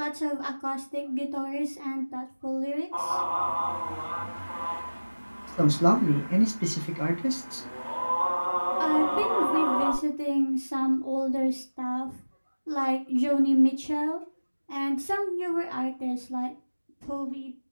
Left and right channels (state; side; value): inverted; both; correlation -1.00